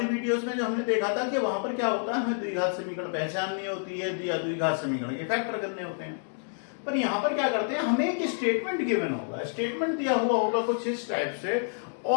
वीडियोस में जो हमने देखा था कि वहां पर क्या होता है, हमें द्विघात समीकरण पहचाननी होती है या द्विघात समीकरण के फैक्टर करने होते हैं। पर यहां पर क्या करते हैं, हमें एक स्टेटमेंट गिवन होगा, स्टेटमेंट दिया हुआ होगा कुछ इस टाइप से,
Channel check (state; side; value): silent; right; 59 dB below the other